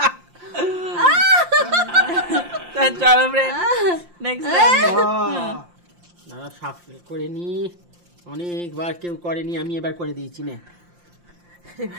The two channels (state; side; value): late; left; 5.7 ms